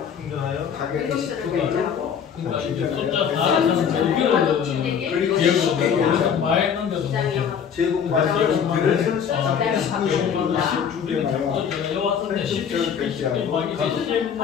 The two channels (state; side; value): quieter; right; 7.5 dB